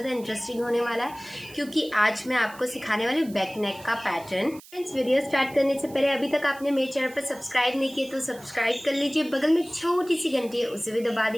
इंटरेस्टिंग होने वाला है क्योंकि आज मैं आपको सिखाने वाली हूँ बैक नेक का पैटर्न। फ्रेंड्स, वीडियो स्टार्ट करने से पहले अभी तक आपने मेरे चैनल पर सब्सक्राइब नहीं किया तो सब्सक्राइब कर लीजिए। बगल में छोटी सी घंटी है, उसे भी दबा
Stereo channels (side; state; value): right; noise; hiss, 21 dB below the sound